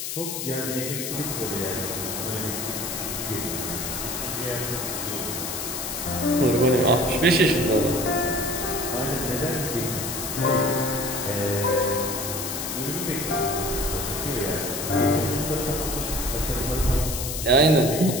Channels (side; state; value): left; noise; hiss, 4 dB below the sound